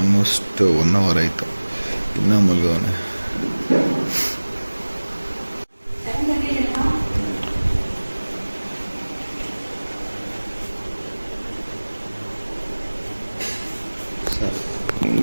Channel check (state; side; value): inverted; both; correlation -1.00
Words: 1 ಅವರ್ ಆಯಿತು, ಇನ್ನೂ ಮಲ್ಗವನೆ.